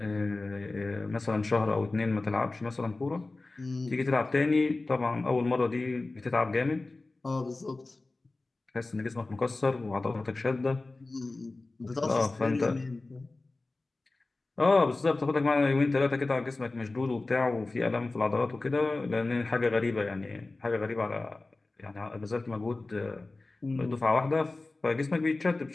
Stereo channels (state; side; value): quieter; right; 3.2 dB